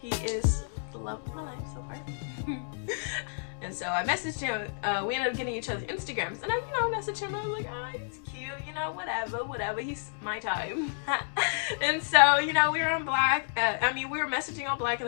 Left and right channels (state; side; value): silent; right; digital silence